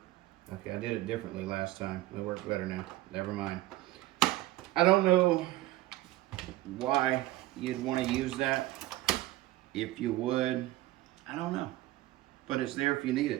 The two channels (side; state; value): left; quieter; 16.9 dB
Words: Okay, I did it differently last time. It works better now. Never mind. I don't know why you'd want to use that. If you would, I don't know. But it's there if you need